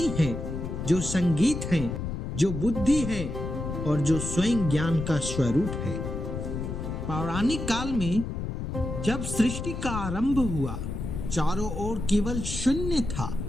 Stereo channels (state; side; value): noise; left; rumble, 5 dB below the sound